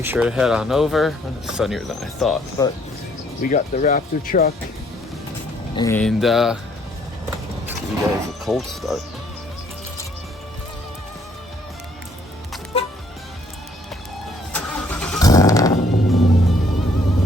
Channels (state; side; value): normal; both; correlation 0.64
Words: sure to head on over. It's sunnier than I thought, but we got the Raptor truck, and give you guys a cold start.